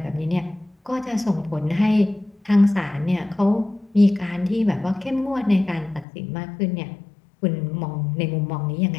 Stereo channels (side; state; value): right; drops out; at 6.1 s